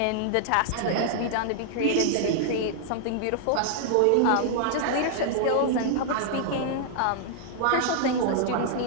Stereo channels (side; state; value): both; different; correlation -0.01